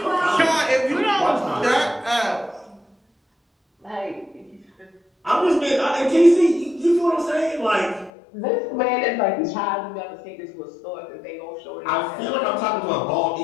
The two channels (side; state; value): right; drops out; at 8.1 s